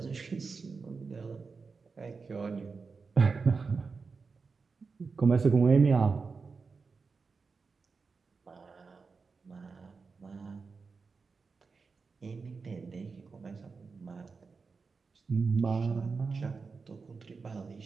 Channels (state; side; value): quieter; left; 4.7 dB